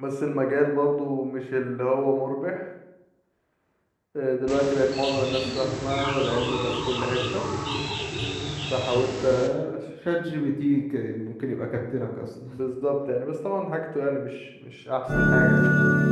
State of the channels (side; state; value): both; identical; correlation 1.00